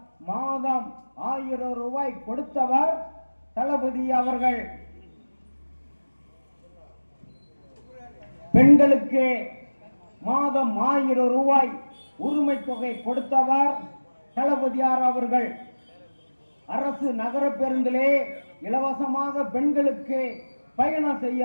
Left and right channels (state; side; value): inverted; both; correlation -1.00